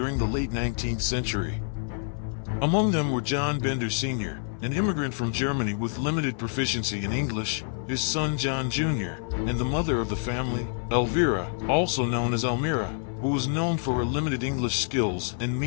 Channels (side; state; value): right; silent; 60 dB below the other